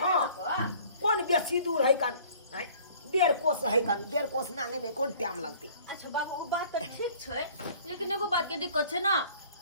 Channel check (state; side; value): inverted; both; correlation -0.52